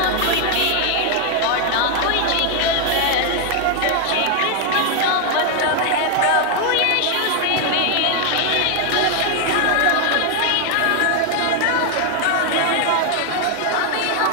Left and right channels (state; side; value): different; both; correlation 0.00